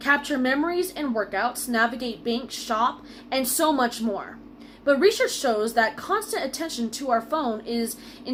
memories and workouts, navigate bank, shop, and so much more. But research shows that constant attention to our phone is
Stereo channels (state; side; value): identical; both; correlation 1.00